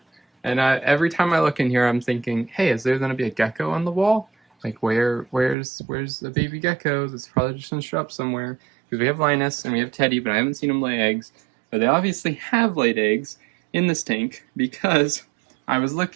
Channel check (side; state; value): left; drops out; at 5.6 s